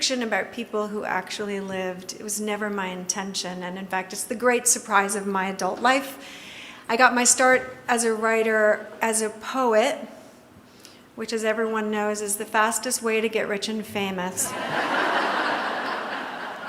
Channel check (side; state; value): both; identical; correlation 1.00